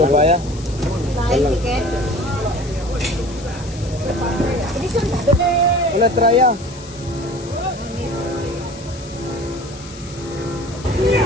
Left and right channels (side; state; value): left; noise; hiss, 18 dB below the sound